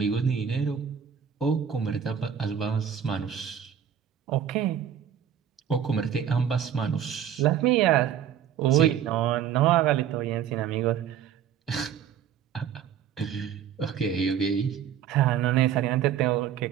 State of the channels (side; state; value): left; quieter; 8.9 dB